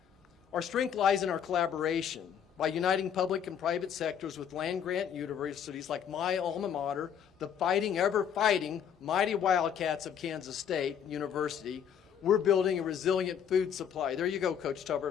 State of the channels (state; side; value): quieter; right; 8.4 dB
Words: Our strength lies in our collaboration. By uniting public and private sectors with land-grant universities like my alma mater, the fighting, ever-fighting, mighty Wildcats of Kansas State University, we're building a resilient food supply. There you go, Coach